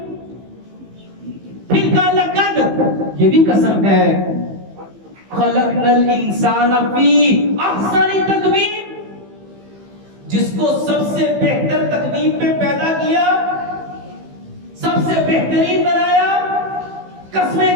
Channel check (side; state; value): left; late; 15 ms